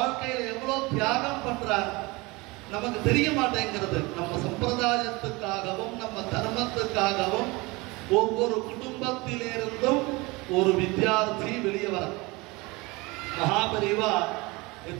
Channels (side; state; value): left; quieter; 24.2 dB